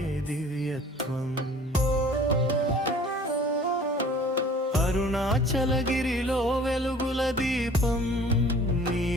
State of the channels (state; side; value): normal; both; correlation 0.49